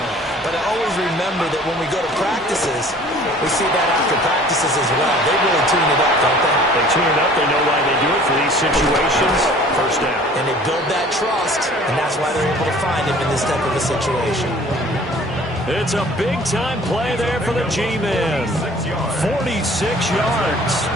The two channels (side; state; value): both; normal; correlation 0.50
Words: But I always remember that when we go to practices, we see that after practices as well. They really tune it up, don't they? They tune it up. They know why they do it for these situations. First down. And they build that trust, and that's why they're able to find him in this type of a situation. It's a big-time play there for the G-men. 46 yards.